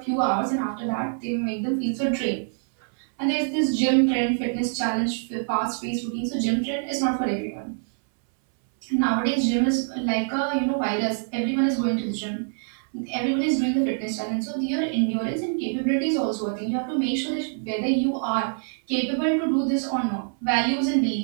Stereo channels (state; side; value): silent; left; 62 dB below the other